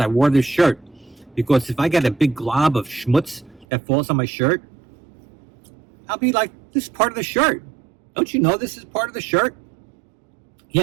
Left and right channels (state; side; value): drops out; left; at 3.7 s